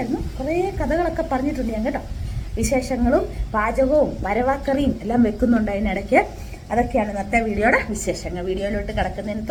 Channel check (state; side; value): identical; both; correlation 1.00